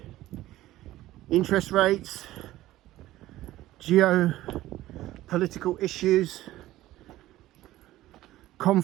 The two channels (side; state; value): left; quieter; 15.6 dB